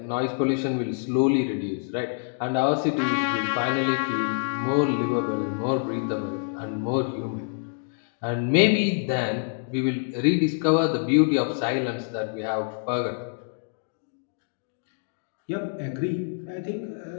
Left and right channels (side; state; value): right; silent; digital silence